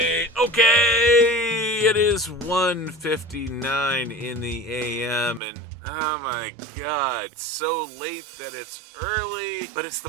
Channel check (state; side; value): drops out; left; at 5.4 s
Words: It is 1:59 in the AM, and oh my god, it's so late that it's early, but it's